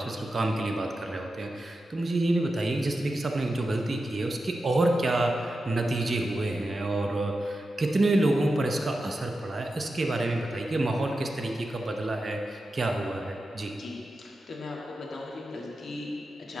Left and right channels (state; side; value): normal; both; correlation 0.91